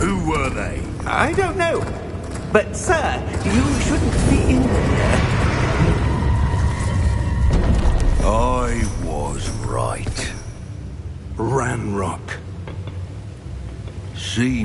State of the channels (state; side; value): identical; both; correlation 1.00